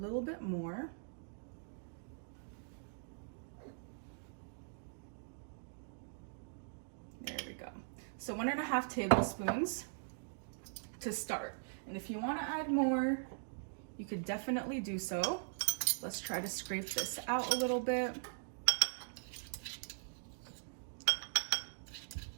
bit more. There we go. So 1.5 tablespoons to start. And if you want to add more, you could definitely do so. Let's try to scrape this out a little bit.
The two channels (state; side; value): silent; left; digital silence